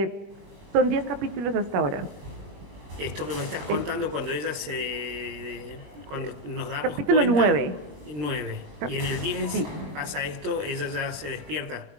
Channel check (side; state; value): left; late; 20 ms